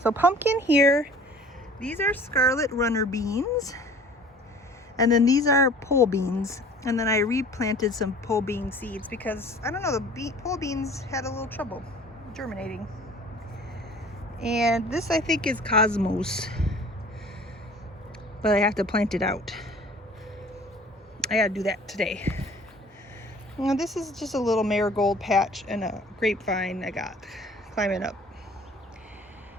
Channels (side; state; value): both; normal; correlation 0.48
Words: pumpkin here, these are scarlet runner beans, and then these are pole beans, and then I replanted some pole bean seeds because I don't know, the pole beans had a little trouble germinating. And this I think is Cosmos, but I have to plant it out. I gotta do that today. Now this is just a little marigold patch and a grapevine I got climbing up.